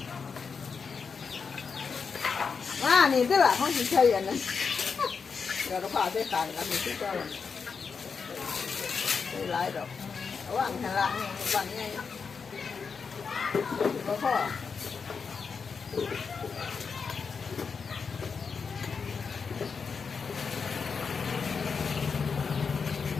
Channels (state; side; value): quieter; right; 5.6 dB